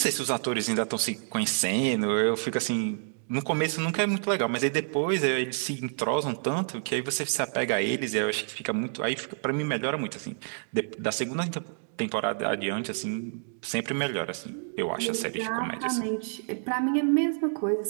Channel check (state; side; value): silent; left; digital silence